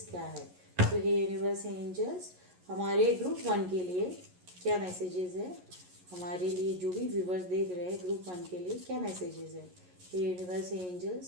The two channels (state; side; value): late; left; 11 ms